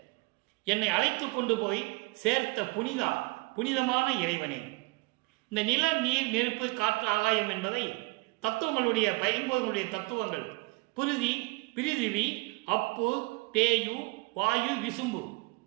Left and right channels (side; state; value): left; quieter; 26.0 dB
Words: என்னை அழைத்து கொண்டு போய் சேர்த்த புனிதா, புனிதமான இறைவனே. இந்த நில, நீர், நெருப்பு, காற்று, ஆகாயம் என்பதை தத்துவங்களுடைய 50 தத்துவங்கள், பிருதி, பிரிதிவி, அப்பு, தேயு, வாயு, விசும்பு.